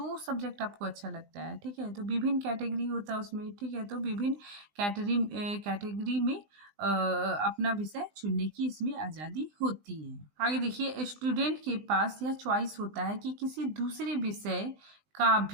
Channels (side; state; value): left; late; 20 ms